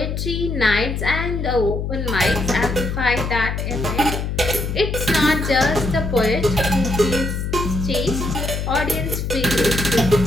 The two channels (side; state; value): left; noise; hum, 3 dB below the sound